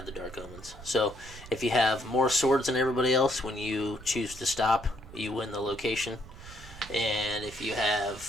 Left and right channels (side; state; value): right; noise; rumble, 17 dB below the sound